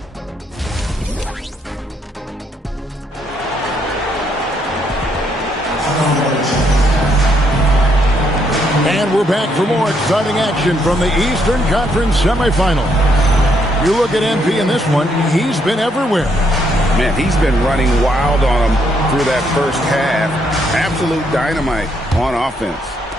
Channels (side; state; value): both; normal; correlation 0.73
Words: And we're back for more exciting action from the Eastern Conference semifinal. You look at MP in this one, he's been everywhere. Man, he's been running wild on him through that first half. Absolute dynamite on offense.